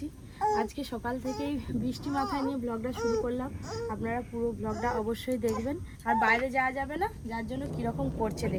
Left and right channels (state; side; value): identical; both; correlation 1.00